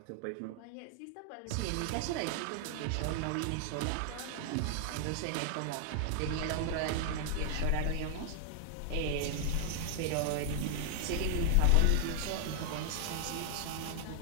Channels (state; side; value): different; both; correlation 0.00